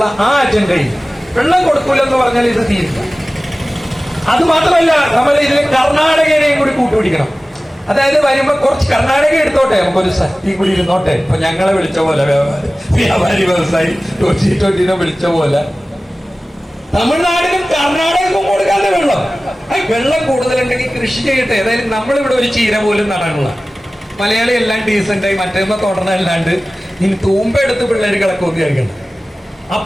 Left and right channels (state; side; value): normal; both; correlation 0.97